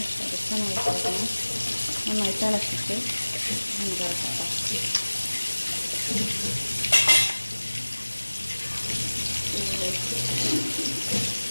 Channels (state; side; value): inverted; both; correlation -1.00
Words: ജസ്റ്റൊന്ന് ഇളക്കി കൊടുക്കണം. നന്നായിട്ട് ഇളക്കിയിട്ട് നമുക്ക് ഇറക്കാം.